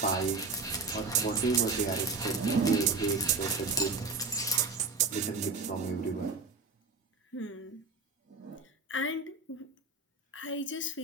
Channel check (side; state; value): left; quieter; 4.1 dB